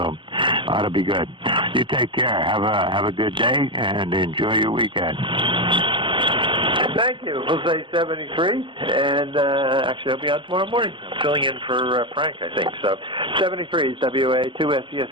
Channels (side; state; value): left; late; 0.24 ms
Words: ought to be good. You take care. Have a good day, and enjoy your weekend. Thank you. Jose 73, and actually I'll be on tomorrow morning. I'm filling in for Frank, I think. So 73 is